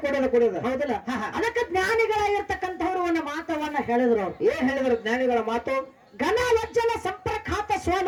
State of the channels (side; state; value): both; identical; correlation 1.00